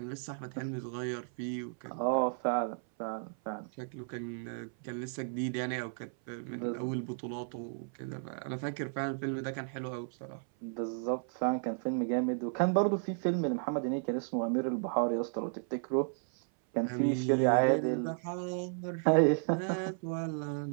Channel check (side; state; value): left; silent; 55 dB below the other